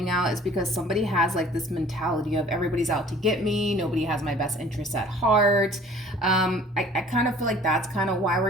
out is because somebody has like this mentality of everybody's out to get me, nobody has my best interests at heart. I kind of feel like that's kind of why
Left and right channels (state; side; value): normal; both; correlation 0.50